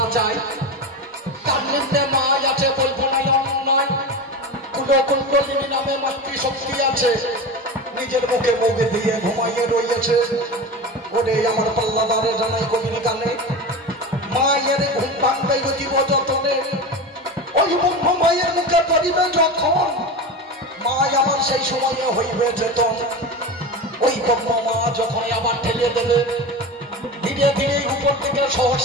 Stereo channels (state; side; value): normal; both; correlation 0.25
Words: যায়, তার নিম্নে মা আছে বলবো না অন্যায়। কুণ্ডলিনী নামে মাতৃশক্তি আছে, নিজের মুখে মুখে দিয়ে ঘুমাইয়ে রয়েছে। ওরে আমার পাল্লাদারে জানাই কবির গানে, মায়ের ঘুম ভাঙবে জীব যতনে। ওই ব্রহ্ম মায়ের মুখে পড়িবে যখন, মা আমার সেই সময়ে হইবে চেতন। ওই ব্রহ্ম মা যখন আবার ঠেলে দেবে, ধীরে ধীরে উপর থেকে